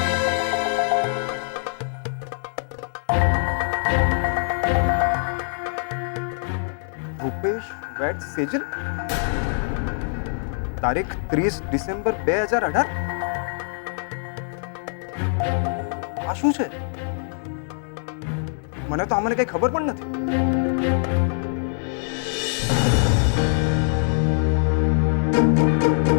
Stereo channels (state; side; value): silent; right; digital silence